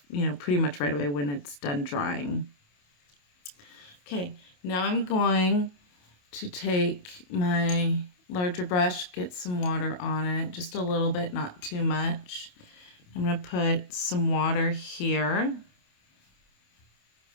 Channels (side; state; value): right; late; 28 ms